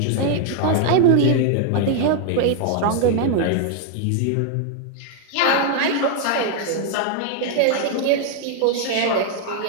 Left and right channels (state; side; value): different; both; correlation 0.00